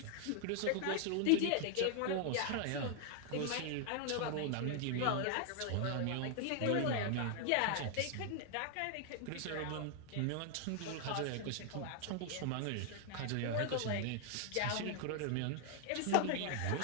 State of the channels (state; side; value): different; both; correlation 0.00